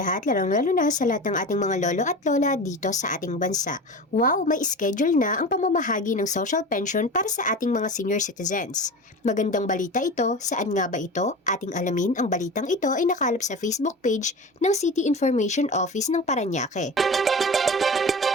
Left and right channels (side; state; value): both; normal; correlation 0.31